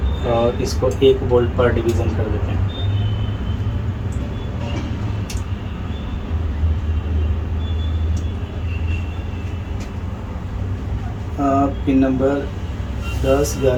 और इसको 1 वोल्ट पर डिवीज़न कर देते हैं। पिन नंबर 10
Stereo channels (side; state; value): both; identical; correlation 1.00